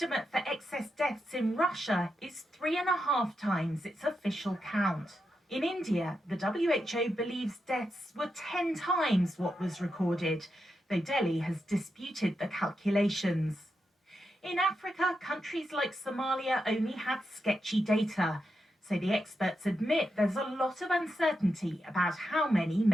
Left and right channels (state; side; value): normal; both; correlation 0.86